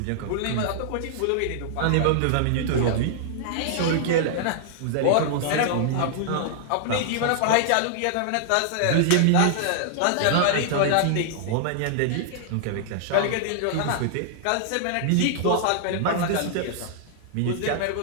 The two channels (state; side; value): different; both; correlation -0.01